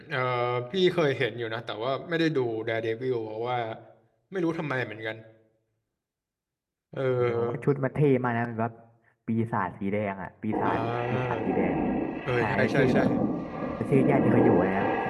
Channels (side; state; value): both; identical; correlation 1.00